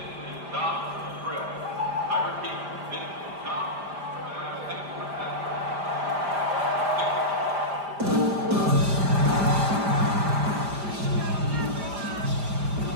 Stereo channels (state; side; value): late; left; 5.0 ms